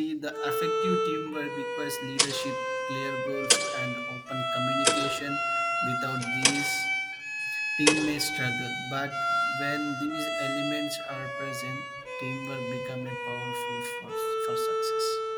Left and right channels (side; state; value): both; identical; correlation 1.00